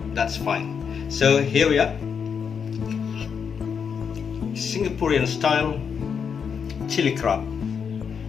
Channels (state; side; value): quieter; right; 6.7 dB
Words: that's fine. So here we are, Singaporean style chili crab.